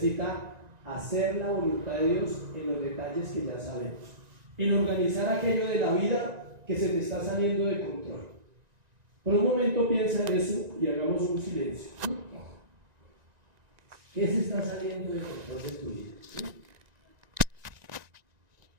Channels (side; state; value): left; late; 1.9 ms